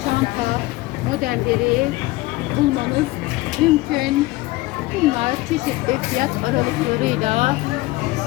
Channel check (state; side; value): quieter; right; 19.9 dB